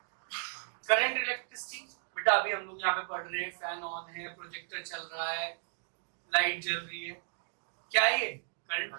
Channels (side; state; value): left; silent; digital silence